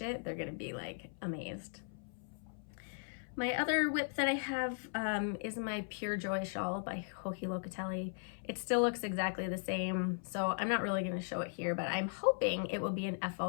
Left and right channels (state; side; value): silent; right; 53 dB below the other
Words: it. They're going to be like amazed. My other whip that I have is my Pure Joy shawl by Hohi Locatelli. It still looks exactly the same, so I'm not really going to show it here, but I'm hoping it will be an FO